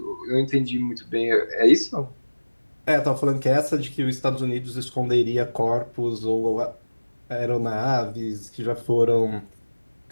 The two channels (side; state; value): both; inverted; correlation -1.00